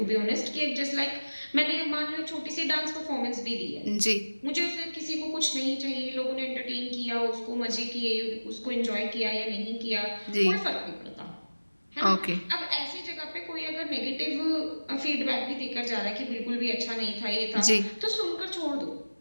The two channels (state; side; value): inverted; both; correlation -1.00